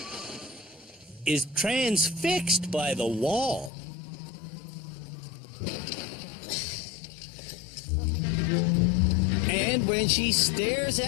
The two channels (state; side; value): drops out; right; at 3.7 s